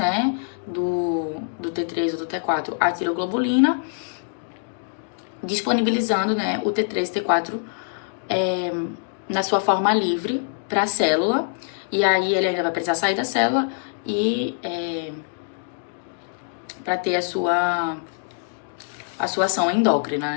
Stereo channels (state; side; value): silent; right; digital silence